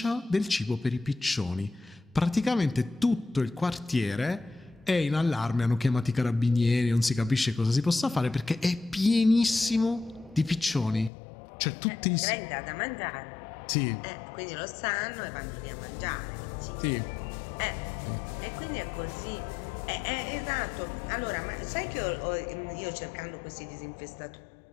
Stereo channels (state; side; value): drops out; right; at 11.1 s